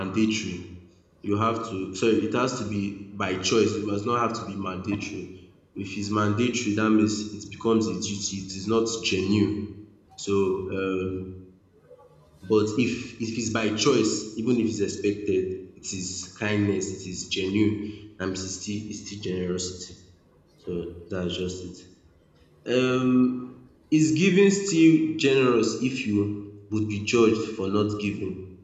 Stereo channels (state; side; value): identical; both; correlation 1.00